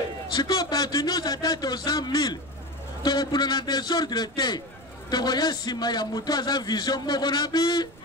siko bato nyonso ata toza 1000 tokobunda na désordre te tokoya nsima ya moto aza vision moko na bi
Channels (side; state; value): right; noise; rumble, 23 dB below the sound